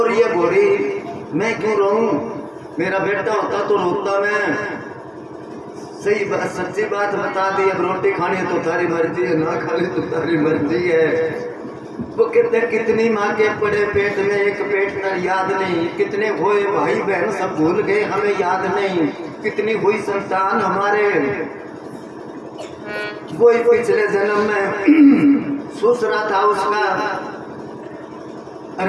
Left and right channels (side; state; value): both; identical; correlation 1.00